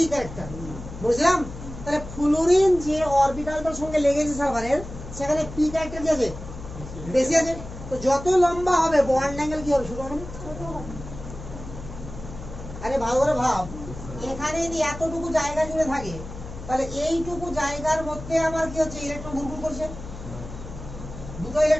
ক্যারেক্টার, বুঝলাম? তাহলে ফ্লুরিন যে অরবিটালটার সঙ্গে লেগেছে সালফারের, সেখানে পি ক্যারেক্টার কি আছে? বেশি আছে। তো যত লম্বা হবে বন্ড অ্যাঙ্গেল কি হবে? ছোট হবে। আরে ভালো করে ভাব, এখানে যদি এতটুকু জায়গা জুড়ে থাকে তাহলে এইটুকু জায়গার মধ্যে আমার কি হচ্ছে? ইলেকট্রন ঘুরঘুর করছে, দুটো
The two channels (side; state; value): left; noise; hum, 12 dB below the sound